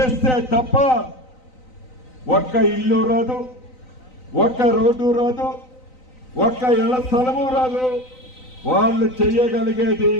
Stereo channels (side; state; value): right; late; 3.9 ms